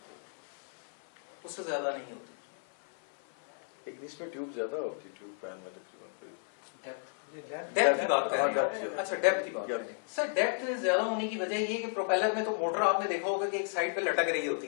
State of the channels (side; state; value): right; silent; 56 dB below the other